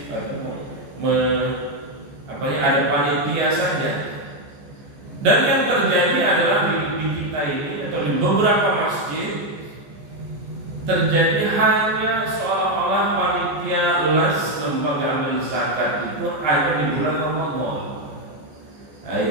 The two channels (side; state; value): left; late; 14 ms